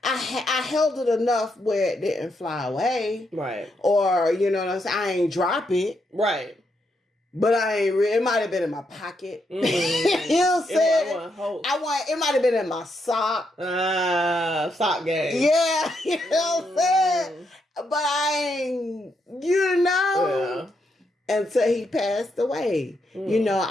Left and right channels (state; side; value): normal; both; correlation 0.79